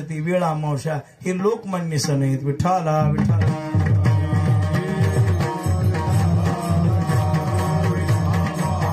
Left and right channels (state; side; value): identical; both; correlation 1.00